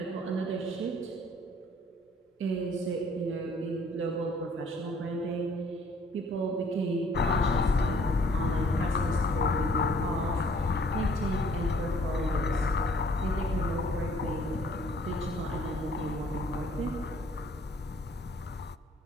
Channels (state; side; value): normal; both; correlation 0.59